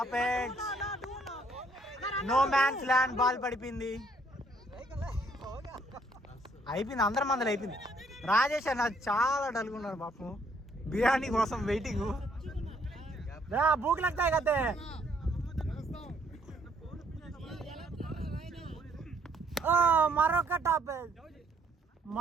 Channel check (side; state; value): both; normal; correlation 0.67